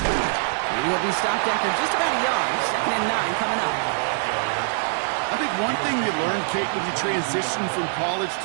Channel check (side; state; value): left; silent; 63 dB below the other